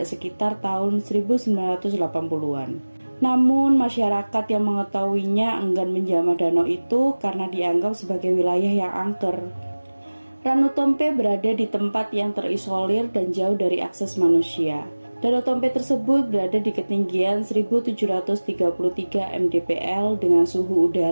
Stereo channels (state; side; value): inverted; both; correlation -1.00